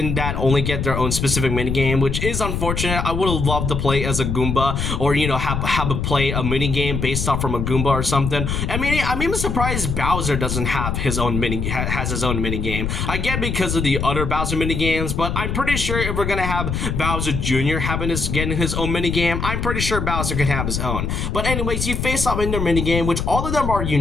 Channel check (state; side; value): noise; left; rumble, 2 dB below the sound